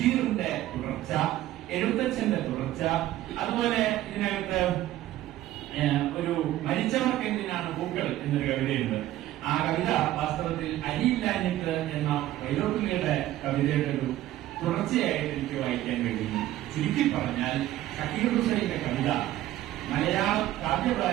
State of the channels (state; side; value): quieter; left; 14.4 dB